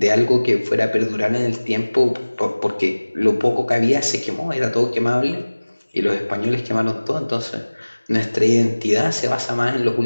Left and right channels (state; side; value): inverted; both; correlation -1.00